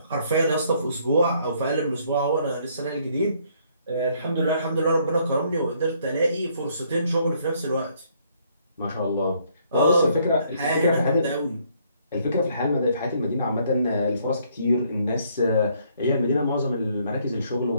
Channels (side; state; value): both; inverted; correlation -0.67